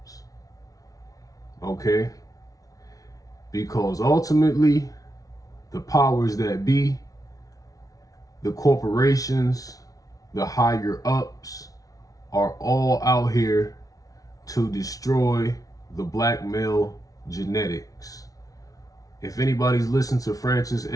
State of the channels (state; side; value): late; right; 0.18 ms